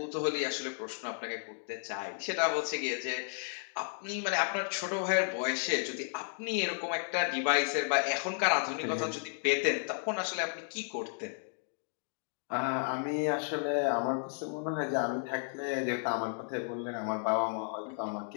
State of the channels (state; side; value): silent; right; 56 dB below the other